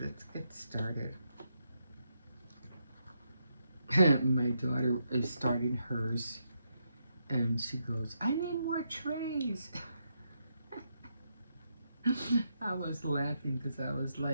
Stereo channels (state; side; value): inverted; both; correlation -0.81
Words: get started. My daughter is starting hers, and she goes, "I need more trays." I was laughing because I was